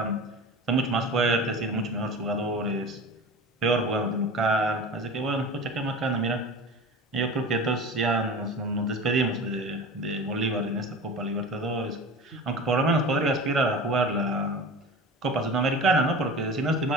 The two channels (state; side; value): normal; both; correlation 0.34